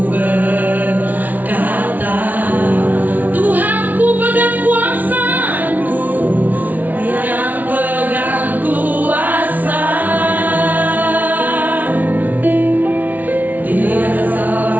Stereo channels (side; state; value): left; late; 0.078 ms